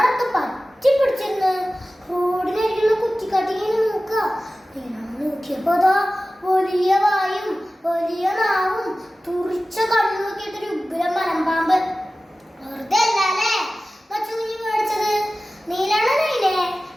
പറ്റി പിടിച്ചിരുന്ന് റോഡിനരികുള്ള കുറ്റിക്കാട്ടിങ്ങനെ നോക്കുക. നോക്കിയപ്പോ അതാ വലിയ വായും വലിയ നാവും തുറിച്ച കണ്ണു നോക്കിയിട്ടൊരു ഉഗ്രം മലമ്പാമ്പ്. വെറുതെ അല്ലേ മച്ചക്കുഞ്ഞ് മേടിച്ചത്. നീലണ്ണനയിലെ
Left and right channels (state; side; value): normal; both; correlation 0.96